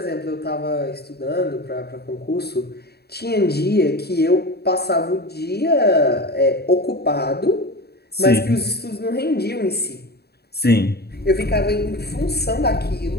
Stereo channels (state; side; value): late; right; 0.47 ms